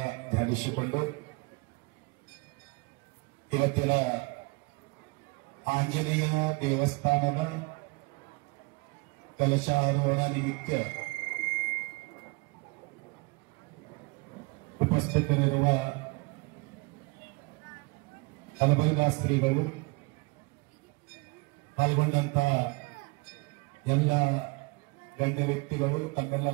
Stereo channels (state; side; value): quieter; left; 26.9 dB